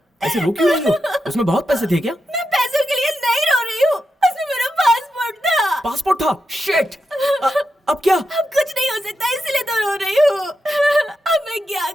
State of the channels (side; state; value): both; normal; correlation 0.87